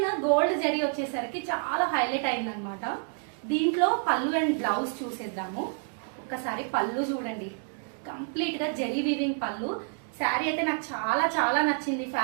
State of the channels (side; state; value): left; silent; 56 dB below the other